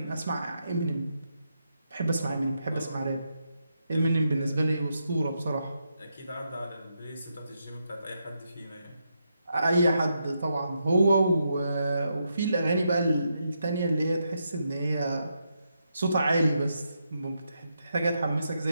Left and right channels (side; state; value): both; inverted; correlation -0.82